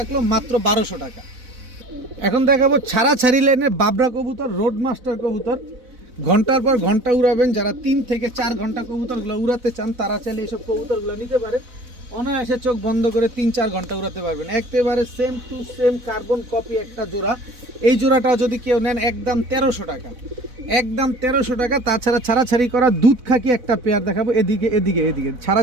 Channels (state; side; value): late; left; 4.0 ms